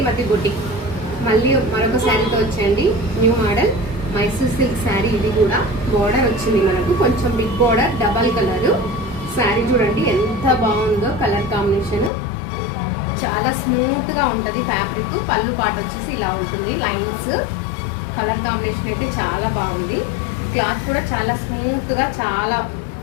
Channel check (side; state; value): right; drops out; at 12.1 s